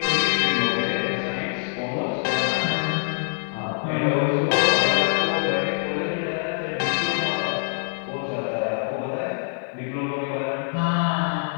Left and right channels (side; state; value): right; silent; digital silence